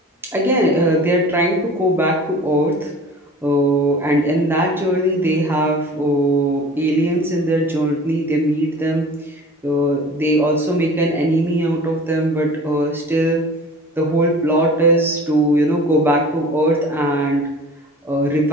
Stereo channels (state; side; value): normal; both; correlation 0.42